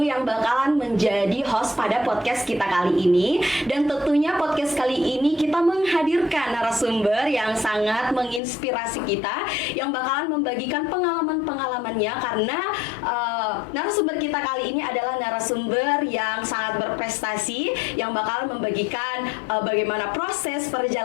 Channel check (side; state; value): right; drops out; at 8.4 s